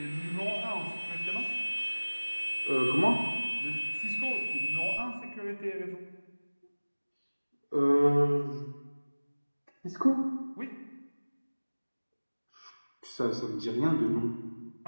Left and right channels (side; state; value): both; inverted; correlation -1.00